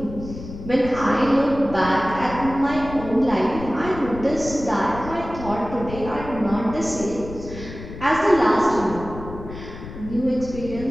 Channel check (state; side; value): noise; left; rumble, 12 dB below the sound